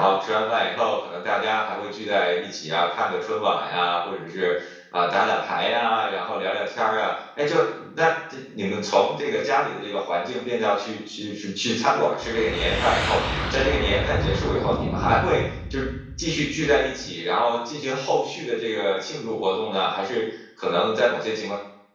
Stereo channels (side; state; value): both; identical; correlation 1.00